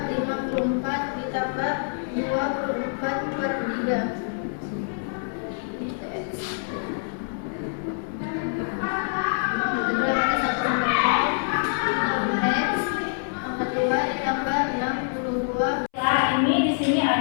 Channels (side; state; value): right; silent; 61 dB below the other